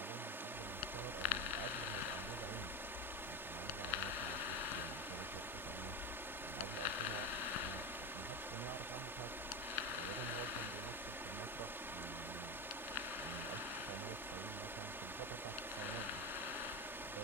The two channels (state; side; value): normal; both; correlation 0.18